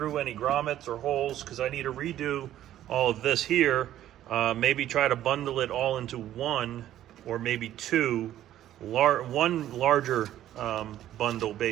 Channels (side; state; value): left; quieter; 12.4 dB